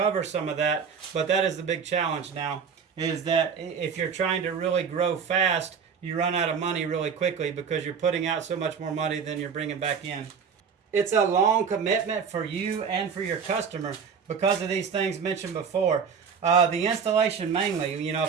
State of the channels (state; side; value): quieter; left; 6.4 dB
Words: some of that, but that is the big challenge now, is that if you're trying to really grow fast, you run out of money really quickly because you're putting out so much more money than you're bringing back in. It's a long commitment for you and for your customer, because of these things mentioned before. The installation mainly, you know,